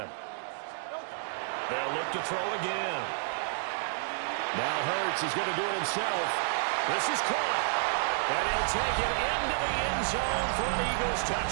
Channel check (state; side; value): silent; left; digital silence